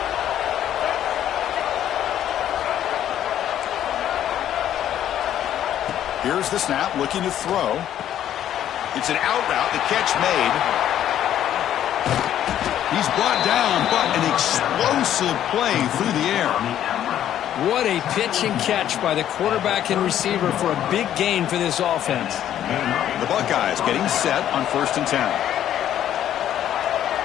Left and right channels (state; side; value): quieter; right; 11.1 dB